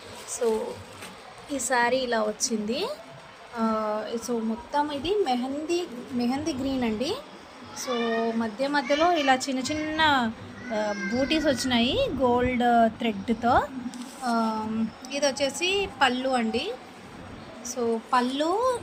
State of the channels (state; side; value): identical; both; correlation 1.00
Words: సో ఈ శారీ ఇలా వచ్చింది. సో మొత్తం ఇది మెహందీ గ్రీన్ అండి. సో మధ్య మధ్యలో ఇలా చిన్న చిన్న బూటీస్ వచ్చినాయి గోల్డ్ థ్రెడ్తో. ఇది వచ్చేసి పళ్ళు అండి. సో పళ్ళు